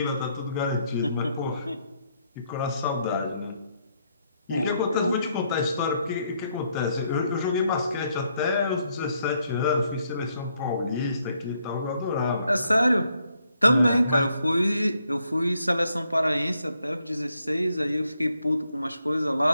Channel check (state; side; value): inverted; both; correlation -0.74